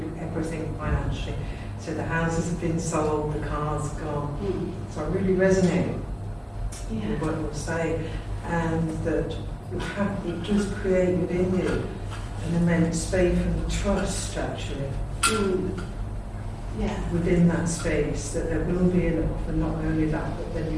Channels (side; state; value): both; identical; correlation 1.00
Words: everything financially. So the houses have been sold, the cars gone. So I really resonate with what you're saying, and that it does create within you an immense faith and trust, actually, within that space, that there will be enough, and not only that, but then